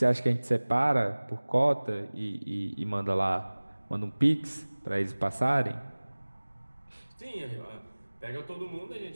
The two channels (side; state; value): both; inverted; correlation -1.00